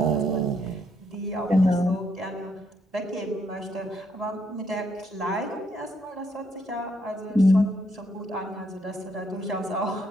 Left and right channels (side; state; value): both; normal; correlation 0.74